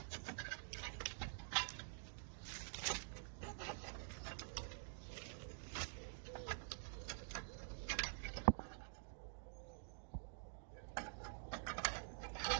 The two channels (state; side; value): silent; left; digital silence